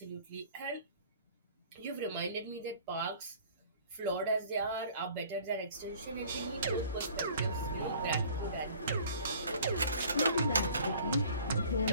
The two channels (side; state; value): both; inverted; correlation -0.51